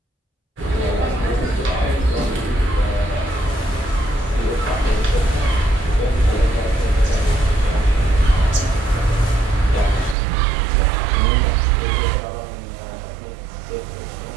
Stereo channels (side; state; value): left; drops out; at 10.2 s